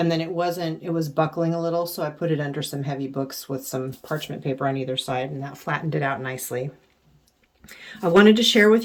then it was buckling a little, so I put it under some heavy books with some parchment paper on either side, and that flattened it out nicely. I wanted to share with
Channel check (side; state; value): both; identical; correlation 1.00